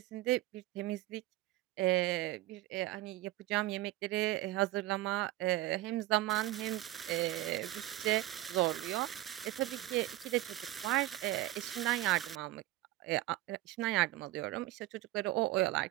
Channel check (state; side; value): quieter; left; 16.0 dB